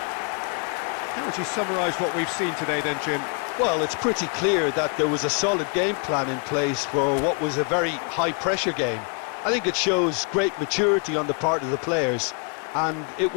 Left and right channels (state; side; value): quieter; right; 37.6 dB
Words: How would you summarise what we've seen today then, Jim? Well, it's pretty clear that there was a solid game plan in place for what was a very high-pressure game. I think it shows great maturity on the part of the players, and it